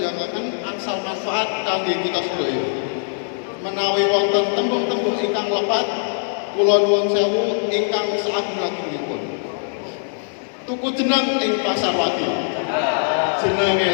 angsal manfaat kangge kita sedaya. Menawi wonten tembung-tembung ingkang lepat, kula nuwun sewu ingkang saageng-agengipun. Tuku jeneng ing pasar wagi. Jenenge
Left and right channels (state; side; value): silent; right; digital silence